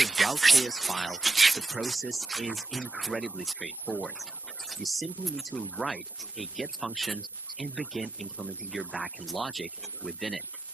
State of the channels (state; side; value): quieter; left; 3.2 dB